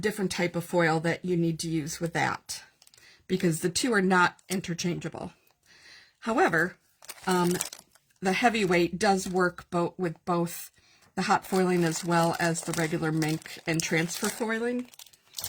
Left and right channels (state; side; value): identical; both; correlation 1.00